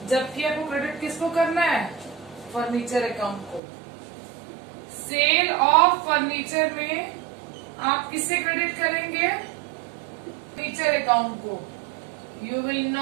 जबकि आपको क्रेडिट किसको करना है? फर्नीचर अकाउंट को। सेल ऑफ फर्नीचर में आप किससे क्रेडिट करेंगे? फर्नीचर अकाउंट को। You will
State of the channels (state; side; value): drops out; left; at 3.6 s